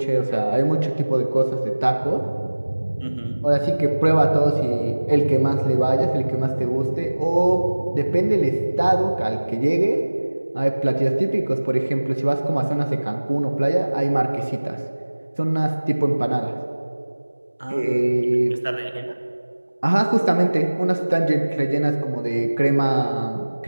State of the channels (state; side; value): inverted; both; correlation -1.00